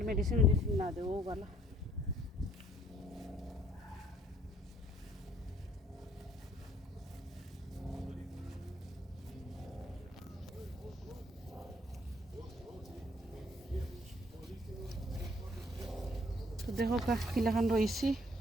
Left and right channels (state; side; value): normal; both; correlation 0.62